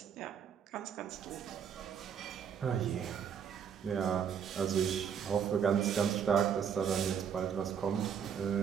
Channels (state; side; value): quieter; left; 7.7 dB